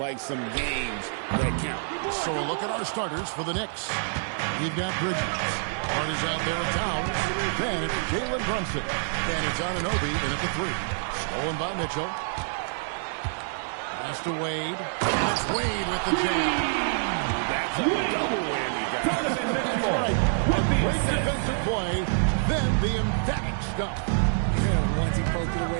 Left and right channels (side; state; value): left; silent; digital silence